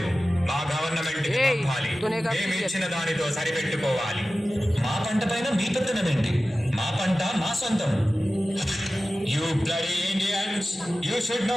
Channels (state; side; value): normal; both; correlation 0.95